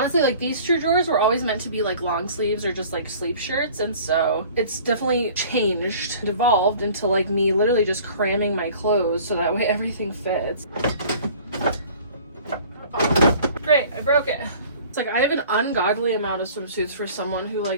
like these two drawers were always meant to be like long sleeves or just like sleep shirts, and so it's definitely changed, evolved into like me literally just cramming my clothes so that way everything fits. Oh, great, I broke it. It's like I have an ungodly amount of swimsuits for someone who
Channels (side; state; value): both; inverted; correlation -0.48